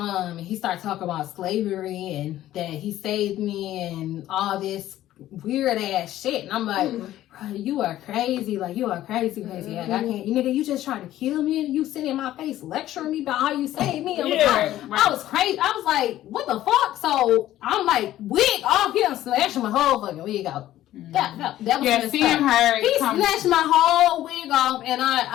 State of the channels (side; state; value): right; quieter; 13.7 dB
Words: he started talking about slavery and that he saved me and all this weird ass shit. And I'm like, bro, you are crazy. Like, you are crazy. Like, I can't. Nigga, you just trying to kill me and you sitting in my face lecturing me about how you saved me. I was crazy. I was like, what the fuck? So I'm like, wig off. He done snatching my whole fucking wig off. That was seeing her. He snatched my whole wig off, and